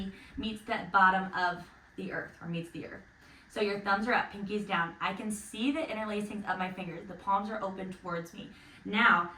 meets the bottom of the earth or meets the earth. So your thumbs are up, pinkies down. I can see the interlacings of my fingers. The palms are open towards me. Now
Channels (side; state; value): both; identical; correlation 1.00